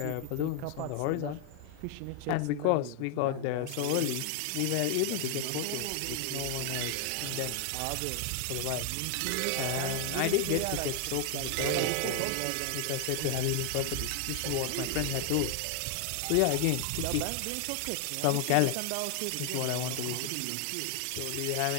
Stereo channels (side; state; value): both; different; correlation 0.00